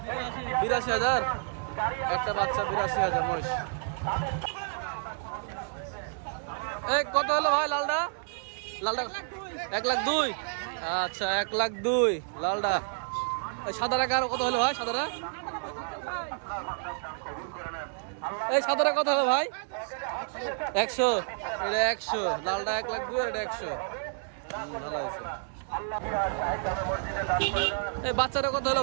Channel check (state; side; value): silent; left; digital silence